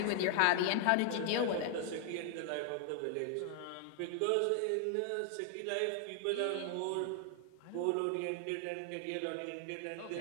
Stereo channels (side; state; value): both; different; correlation 0.00